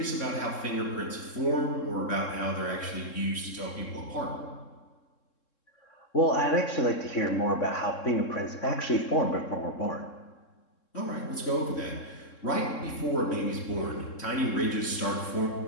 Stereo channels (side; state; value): right; late; 3.7 ms